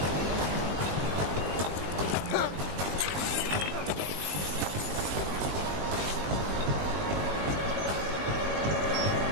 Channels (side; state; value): left; late; 20 ms